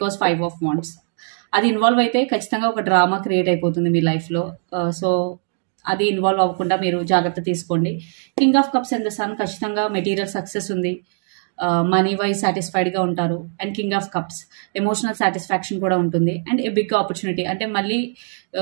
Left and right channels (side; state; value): left; silent; digital silence